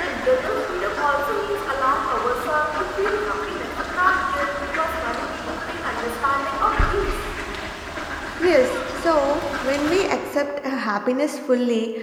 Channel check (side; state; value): both; identical; correlation 1.00